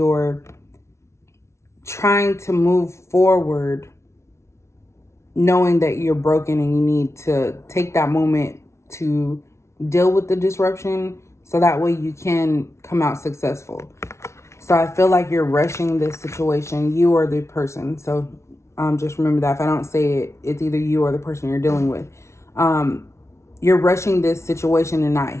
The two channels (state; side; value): late; right; 0.13 ms